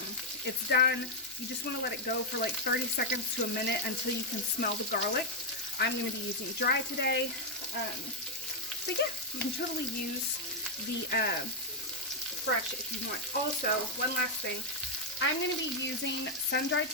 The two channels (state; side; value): noise; left; hum, 29 dB below the sound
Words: it's done. You just want to let it go for like 30 seconds to a minute until you can smell the garlic. I'm going to be using dry today. But yeah, you can totally use the fresh if you want. Also, one last thing. I'm going to be using sun-dried